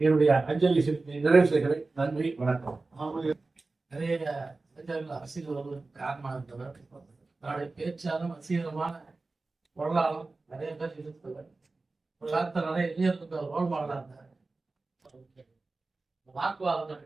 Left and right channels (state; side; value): quieter; left; 3.5 dB